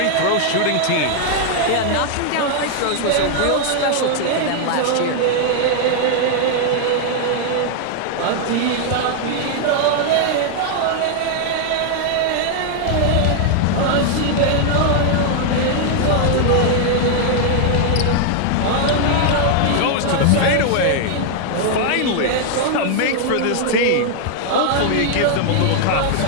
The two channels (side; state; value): both; different; correlation 0.00